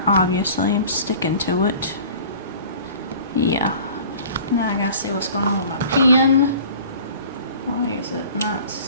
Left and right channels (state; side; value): inverted; both; correlation -0.45